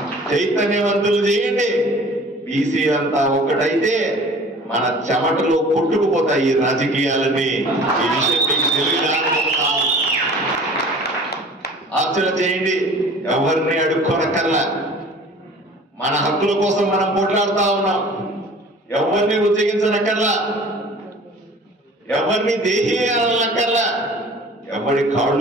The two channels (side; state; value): both; normal; correlation 0.46